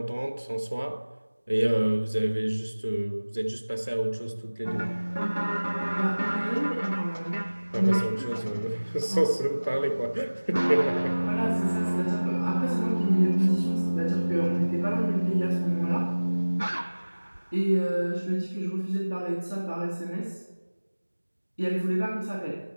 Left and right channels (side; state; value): both; inverted; correlation -1.00